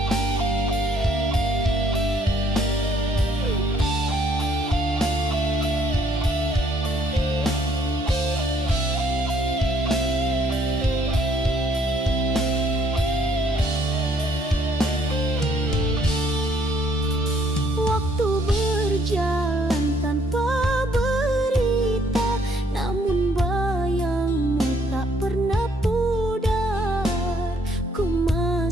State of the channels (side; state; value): both; normal; correlation 0.66